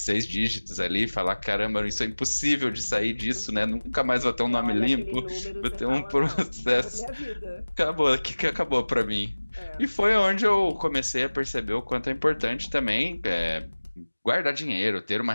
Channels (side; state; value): both; inverted; correlation -1.00